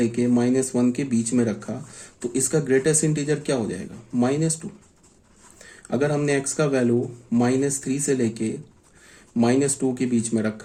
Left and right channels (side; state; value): both; identical; correlation 1.00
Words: -1 के बीच में रखा, तो इसका ग्रेटेस्ट इंटीजर क्या हो जाएगा -2। अगर हमने x का वैल्यू -3 से लेके -2 के बीच में